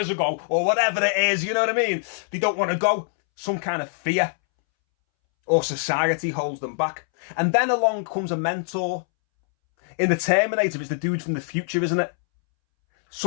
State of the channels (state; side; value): silent; right; 63 dB below the other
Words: ago. Or whatever it is, you know what I mean? They don't want to go. Some kind of fear or society holds them back. And then along comes a mentor. In the Terminator, it's the dude from the future, isn't it?